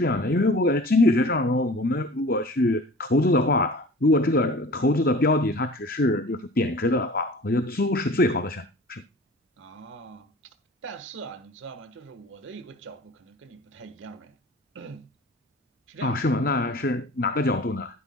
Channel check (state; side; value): normal; both; correlation 0.42